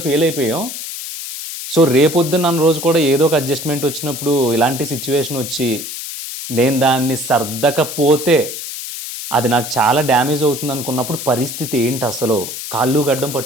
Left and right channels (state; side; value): noise; left; hiss, 8 dB below the sound